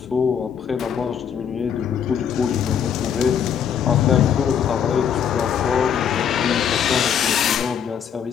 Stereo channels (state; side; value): quieter; right; 8.2 dB